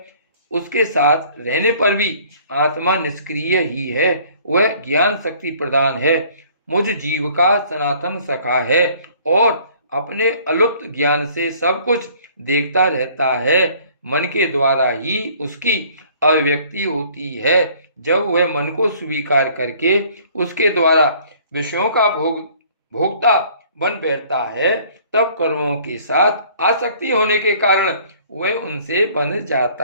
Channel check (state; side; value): inverted; both; correlation -0.56